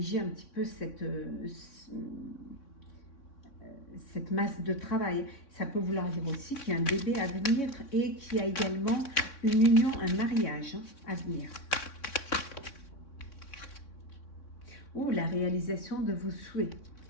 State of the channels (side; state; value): right; late; 3.6 ms